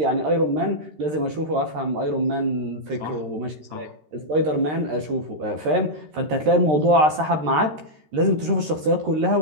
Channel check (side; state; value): left; late; 13 ms